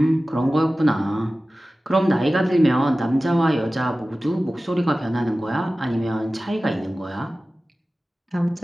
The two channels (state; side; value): normal; both; correlation 0.96